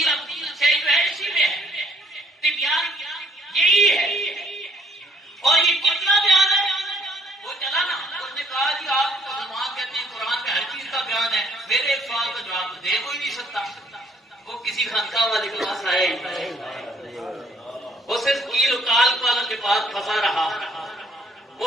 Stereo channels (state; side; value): normal; both; correlation 0.64